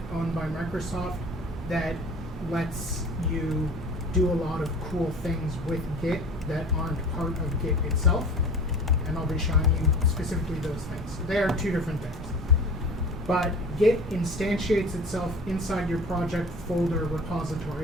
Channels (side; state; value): both; normal; correlation 0.40